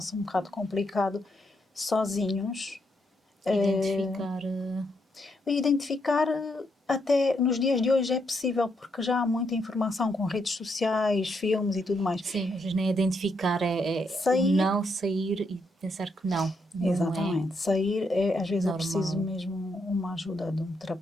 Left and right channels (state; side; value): normal; both; correlation 0.78